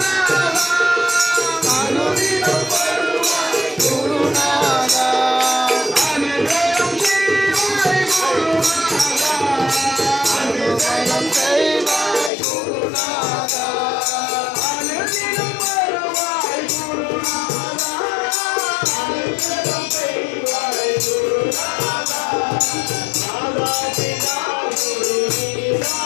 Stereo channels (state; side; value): drops out; right; at 12.3 s